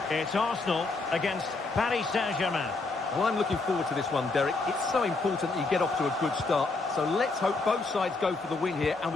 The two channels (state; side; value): quieter; right; 3.6 dB